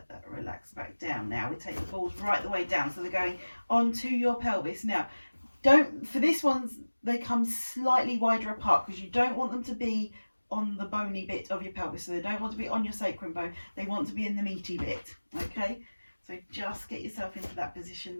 that relax back down. Now we take the balls right the way down, so they're going onto your pelvis. Now, for this ones, they come slightly wider apart because you don't want them to be on the bony bit of your pelvis. So they don't want to be on your sacrum bone. They want to be in the meaty bit. Okay, so just get yourself into that position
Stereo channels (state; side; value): inverted; both; correlation -1.00